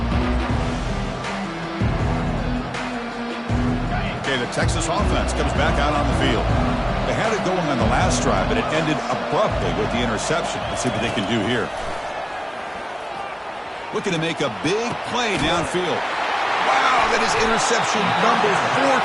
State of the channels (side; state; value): both; identical; correlation 1.00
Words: Okay, the Texas offense comes back out on the field. They had it going on the last drive, but it ended abruptly with the interception. Let's see what they can do here. Looking to make a big play downfield. Wow, that is interception number 4